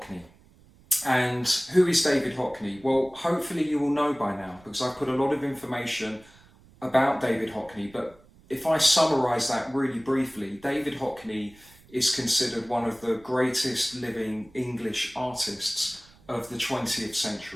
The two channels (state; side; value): noise; right; rumble, 27 dB below the sound